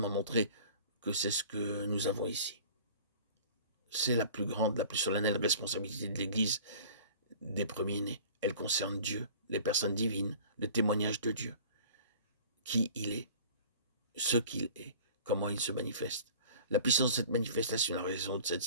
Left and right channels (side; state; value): both; inverted; correlation -0.44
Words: montrer que c'est ce que nous avons ici. C'est la plus grande, la plus solennelle responsabilité de l'Église des premiers-nés. Elle concerne Dieu, les personnes divines, le témoignage de Dieu, qui il est, ce qu'il est, comment il se manifeste, la puissance de cette manifestation, la raison de